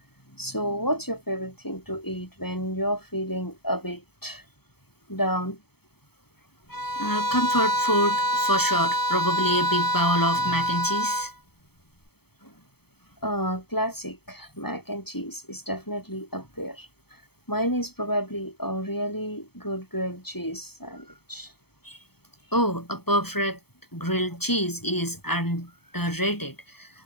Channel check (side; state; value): right; late; 0.97 ms